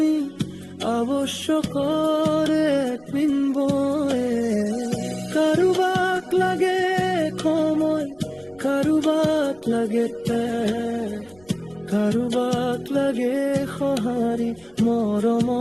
আৱশ্যকৰ এক বিন্দুৱে। কাৰোবাক লাগে সময়, কাৰোবাক লাগে কাৰোবাক লাগে সঁহাৰি মৰম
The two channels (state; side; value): noise; right; rumble, 30 dB below the sound